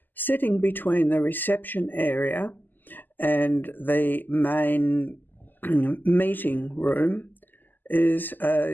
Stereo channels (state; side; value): late; right; 0.088 ms